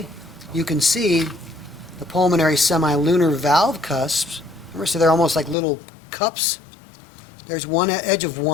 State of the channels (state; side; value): drops out; right; at 5.6 s